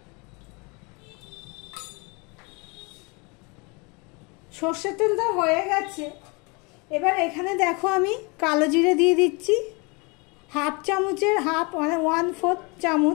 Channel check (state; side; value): quieter; right; 29.5 dB